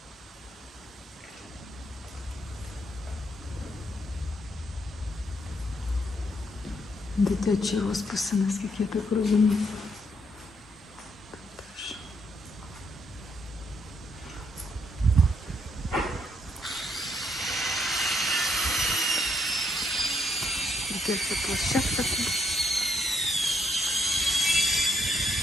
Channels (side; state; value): both; normal; correlation 0.73